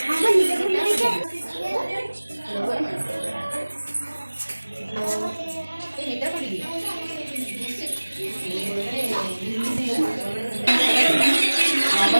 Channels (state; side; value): inverted; both; correlation -1.00